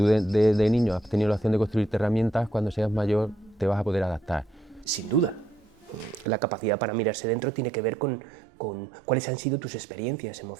de niño has tenido la opción de construirte herramientas, cuando seas mayor te vas a poder adaptar. Sin duda. La capacidad para mirarse dentro tiene que ver con cuáles han sido tus experiencias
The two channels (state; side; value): drops out; left; at 6.2 s